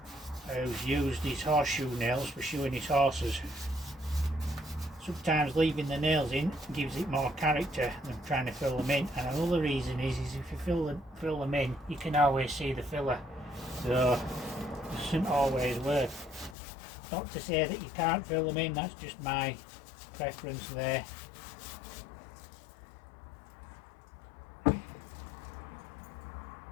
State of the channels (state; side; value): drops out; right; at 16.6 s